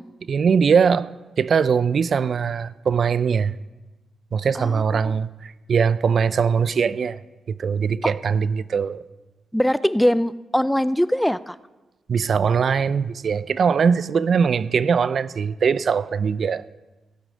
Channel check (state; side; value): quieter; left; 4.7 dB